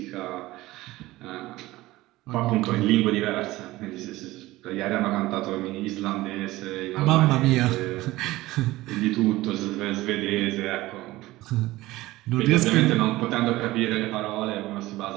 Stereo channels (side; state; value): left; quieter; 18.1 dB